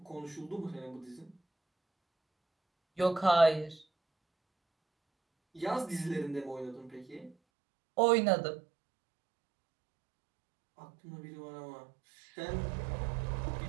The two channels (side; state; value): left; drops out; at 7.4 s